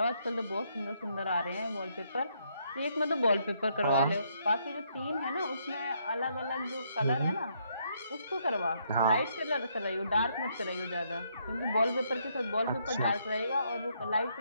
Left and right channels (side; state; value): both; inverted; correlation -0.73